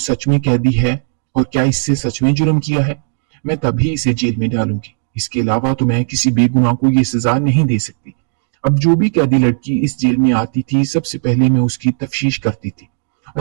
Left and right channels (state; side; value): silent; left; digital silence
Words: में कैदी है और क्या इससे सच में जुर्म किया है। मैं तभी इसे जेल में डालूंगी। इसके अलावा तो मैं किसी बेगुनाह को ये सजा नहीं दे सकती। अब जो भी कैदी लड़की इस जेल में आती थी, सबसे पहले मैं उसकी तफ्तीश करती थी